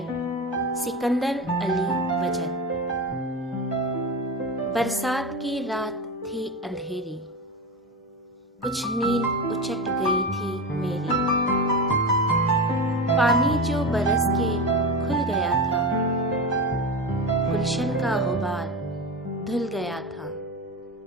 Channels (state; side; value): normal; both; correlation 0.23